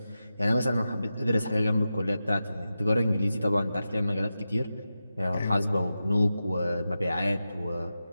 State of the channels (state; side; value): inverted; both; correlation -0.91